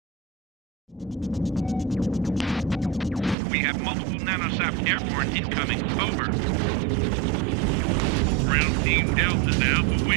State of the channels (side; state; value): left; drops out; at 3.4 s